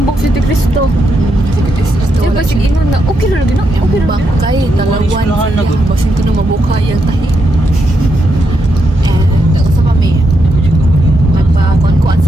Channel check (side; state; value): both; normal; correlation 0.81